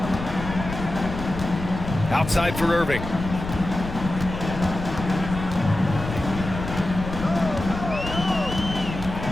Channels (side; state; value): left; noise; rumble, 8 dB below the sound